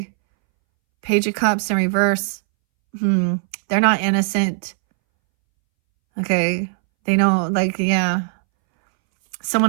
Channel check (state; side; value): silent; left; 65 dB below the other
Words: Page of Cups in reverse. They're not innocent. Okay. They know, like, yeah.